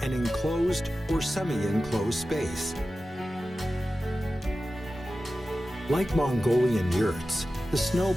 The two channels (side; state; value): both; normal; correlation 0.94